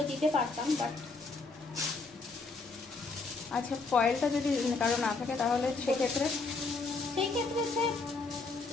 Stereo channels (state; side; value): quieter; right; 3.9 dB